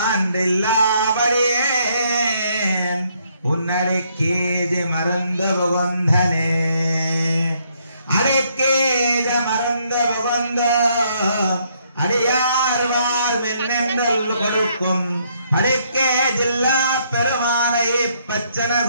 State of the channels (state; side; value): inverted; both; correlation -0.70